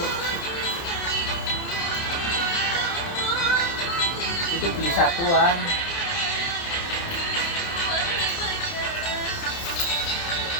Itu beli satuan.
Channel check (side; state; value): right; late; 30 ms